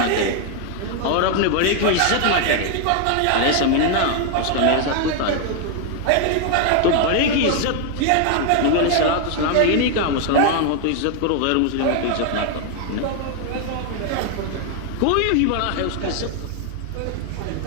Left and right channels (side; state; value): both; different; correlation 0.00